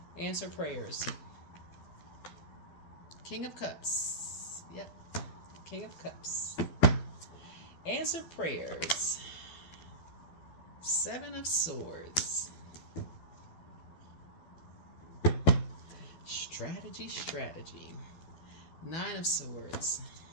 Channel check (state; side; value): late; right; 12 ms